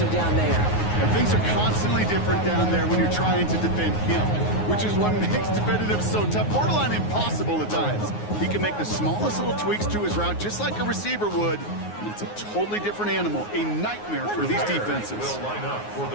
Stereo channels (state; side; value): late; right; 9.5 ms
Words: him down there. And things are constantly different down there when you're trying to defend him, which is what makes defending him so tough, borderline impossible at times. He can make the smallest little tweaks to his route just like a receiver would, and it's a totally different animal, a nightmare for these defenses. Will line up for